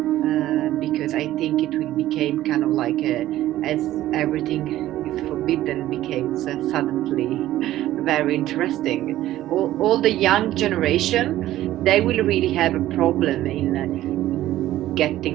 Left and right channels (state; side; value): quieter; left; 14.3 dB